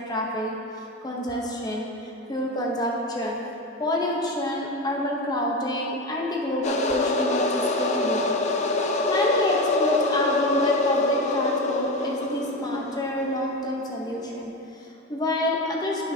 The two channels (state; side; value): normal; both; correlation 0.21